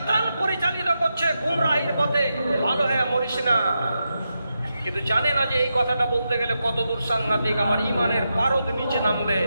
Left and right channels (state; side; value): inverted; both; correlation -0.87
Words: পরিচালিত করছে গুমরাহির পথে, ভালো হয়ে মরিস না। কিন্তু জানে না যে এই কথাটা বলতে গেলে কত দূর সাংঘাতিক, আমার ইমানের পারদ নিচে নামবে।